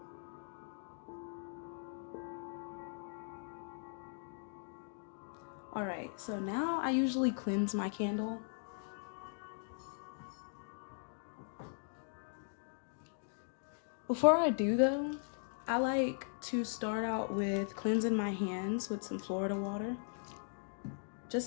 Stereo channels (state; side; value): silent; right; digital silence